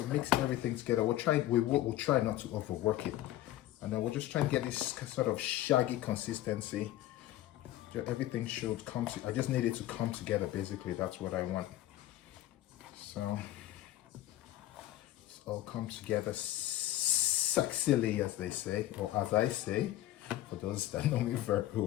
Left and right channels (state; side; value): quieter; right; 14.3 dB